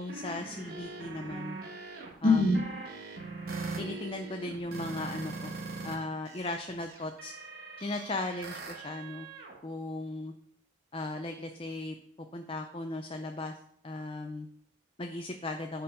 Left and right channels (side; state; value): both; normal; correlation 0.61